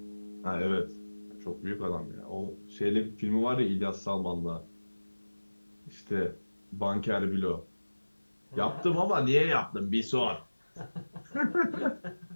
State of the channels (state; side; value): inverted; both; correlation -1.00